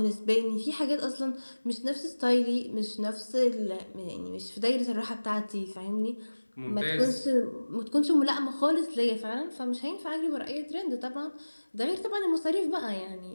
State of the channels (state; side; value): inverted; both; correlation -1.00